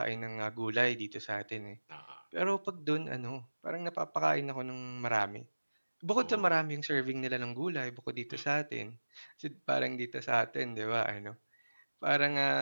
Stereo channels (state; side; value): inverted; both; correlation -1.00